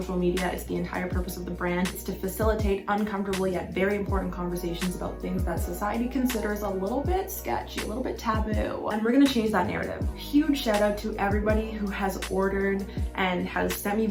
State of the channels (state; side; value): identical; both; correlation 1.00